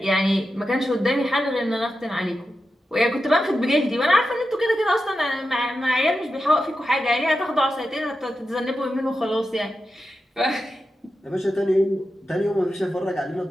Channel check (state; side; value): normal; both; correlation 0.90